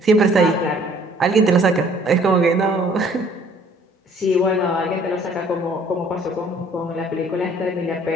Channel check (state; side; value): normal; both; correlation 0.58